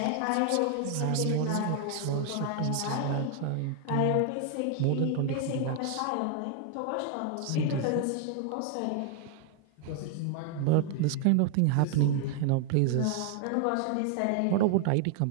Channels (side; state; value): both; different; correlation 0.00